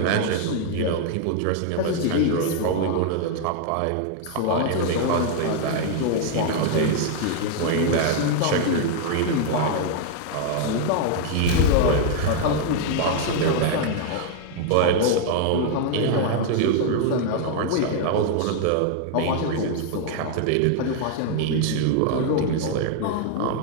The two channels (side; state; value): both; different; correlation 0.00